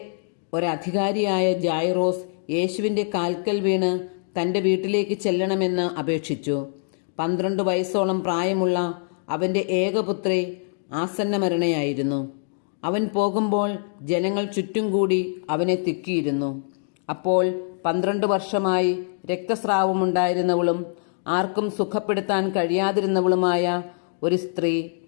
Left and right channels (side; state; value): right; silent; digital silence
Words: ഒരധികാരിയായ ജായ്റോസ് യേശുവിൻ്റെ കാൽക്കൽ വീണ് തൻ്റെ വീട്ടിലേക്ക് ചെല്ലണമെന്ന് അപേക്ഷിച്ചു. 12 വയസ്സോളം പ്രായമുള്ള അവൻ്റെ ഏകപുത്രി ആസന്നമരണയായിരുന്നു. അവൻ പോകുമ്പോൾ ജനങ്ങൾ ചുറ്റും കൂടി അവനെ തിക്കിയിരുന്നു. അപ്പോൾ 12 വർഷമായി രക്തസ്രാവമുണ്ടായിരുന്നവളും ആർക്കും സുഖപ്പെടുത്താൻ കഴിയാതിരുന്നവളുമായ ഒരു സ്ത്രീ